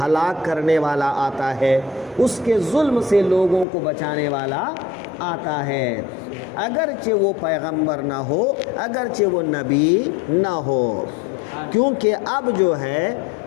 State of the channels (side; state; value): right; drops out; at 3.7 s